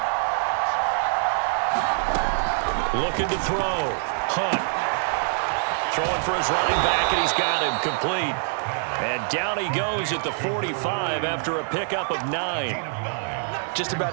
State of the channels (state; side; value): silent; left; digital silence